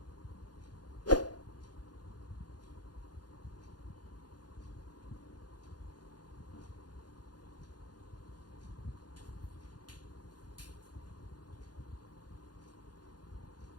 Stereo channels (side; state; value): right; late; 0.69 ms